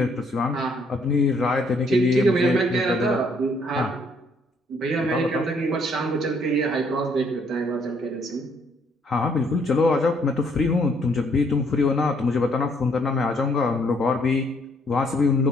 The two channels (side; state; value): both; normal; correlation 0.67